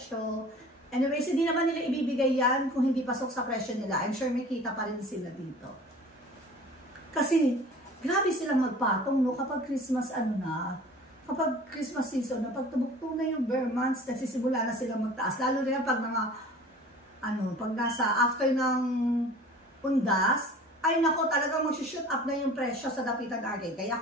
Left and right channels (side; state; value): both; normal; correlation 0.44